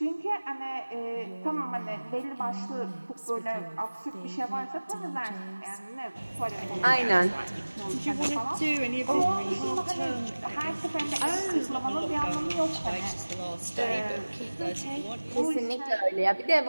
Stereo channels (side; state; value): both; inverted; correlation -1.00